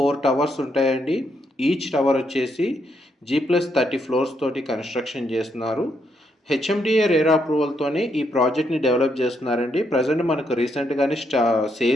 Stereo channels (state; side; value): normal; both; correlation 0.77